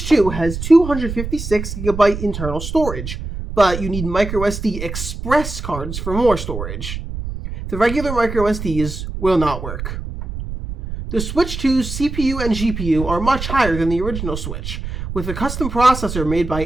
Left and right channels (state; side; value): noise; right; rumble, 7 dB below the sound